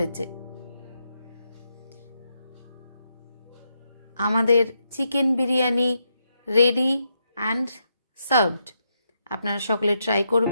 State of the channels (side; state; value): both; inverted; correlation -0.82